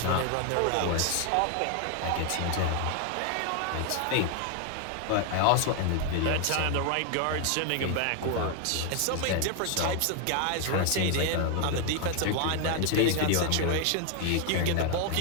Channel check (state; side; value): different; both; correlation 0.00